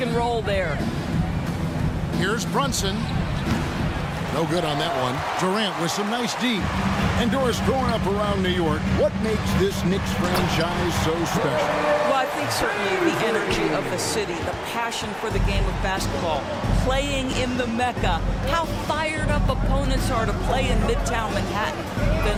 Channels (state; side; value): identical; both; correlation 1.00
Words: and roll there. Here's Brunson. No good on that one. Durant with some nice D. And Doris, growing up around New York, what makes this Knicks franchise so special? Well, I think certainly the energy of the city, the passion for the game of basketball, playing in the Mecca, how fired up opponents are to play in Midtown Manhattan. The